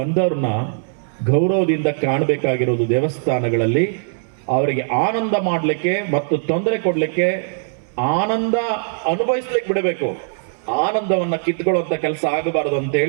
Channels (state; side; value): silent; left; 66 dB below the other